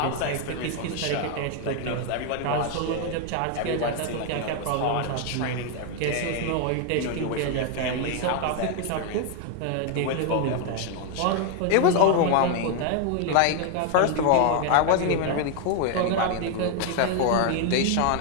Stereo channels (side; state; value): both; different; correlation 0.00